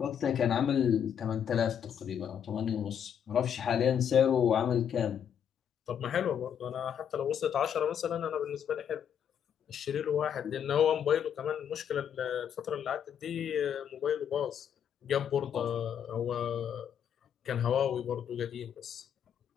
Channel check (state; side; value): quieter; right; 8.6 dB